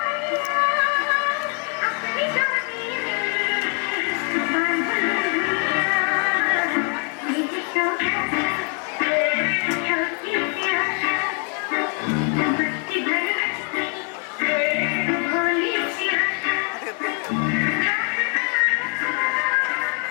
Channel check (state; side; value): quieter; right; 39.7 dB